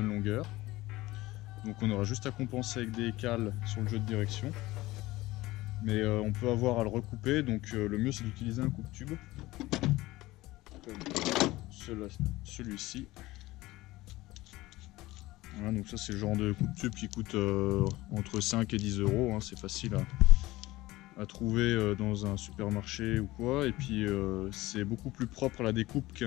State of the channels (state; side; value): quieter; right; 18.6 dB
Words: longueur. Donc on aura juste à compenser avec des cales sur le jeu de direction. Mais on peut avoir à le recouper, donc le mieux c'est d'utiliser un coupe-tube. Comme celui-ci. Voilà, donc ça c'est le genre de coupe-tube qui coûte entre 5 et 10 €. Hein, c'est facile à trouver dans un supermarché ou quoi. Et puis c'est beaucoup plus propre à la découpe